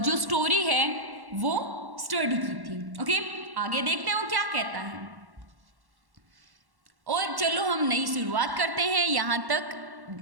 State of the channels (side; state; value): left; late; 1.1 ms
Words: जो स्टोरी है वो स्टडी की थी। ओके, आगे देखते हैं वो क्या कहता है। और चलो हम नई शुरुआत करते हैं। यहाँ तक